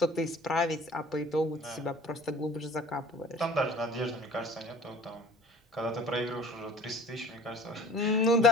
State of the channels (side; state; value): both; normal; correlation 0.46